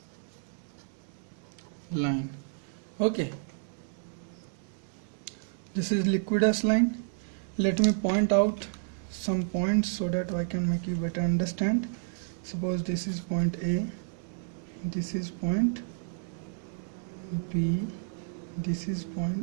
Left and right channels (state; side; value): silent; left; digital silence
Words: line. Okay, this is liquidus line. Let me point out some points so that I can make you better understand. Suppose this is point A, this is point B, this is